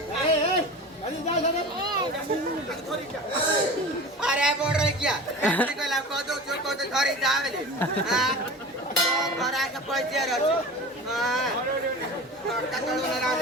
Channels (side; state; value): both; normal; correlation 0.34